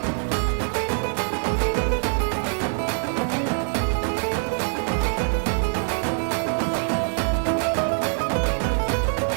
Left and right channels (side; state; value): left; silent; 59 dB below the other